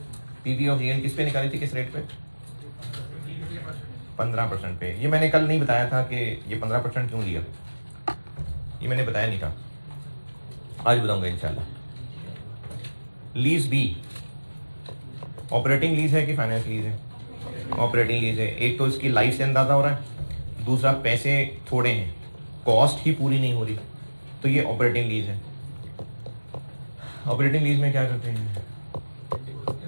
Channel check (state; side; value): inverted; both; correlation -1.00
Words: पीबी ऑफ जीएल किस पे निकाली थी, किस रेट पे? 15% पे। ये मैंने कल नहीं बताया था कि ये 15% क्यों लिया, ये मैंने बताया नहीं था, आज बताऊंगा इंशाल्लाह। लीज बी ऑपरेटिंग लीज है कि फाइनेंस लीज है? ऑपरेटिंग लीज है। एक तो इसकी लाइफ से अंदाजा हो रहा है, दूसरा पैसे थोड़े हैं, कॉस्ट ही पूरी नहीं हो रही, तो ये ऑपरेटिंग लीज है। ऑपरेटिंग लीज में क्या करते हैं?